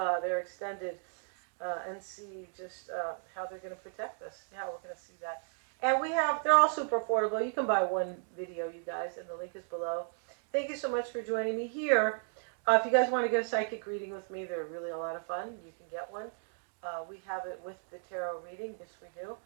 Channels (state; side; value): silent; left; 55 dB below the other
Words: their extended and see just how they're going to protect us. Yeah, we're going to see that. And they're all super affordable. You can buy one video, you guys, and the link is below. Thank you so much for joining me here. If you guys want to get a psychic reading with me, they're really a lot of fun. You can get one. We have it with the tarot reading. Yes, we do.